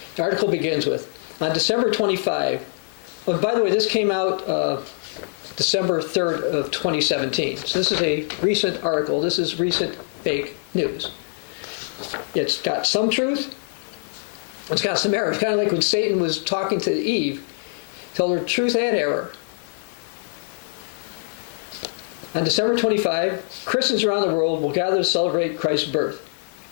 The article begins with, on December 25, oh, by the way, this came out December 3rd of 2017. So this is a recent article. This is recent fake news. It's got some truth. It's got some error. It's kind of like when Satan was talking to Eve, told her truth and error. On December 25, Christians around the world will gather to celebrate Christ's birth.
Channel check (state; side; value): silent; right; digital silence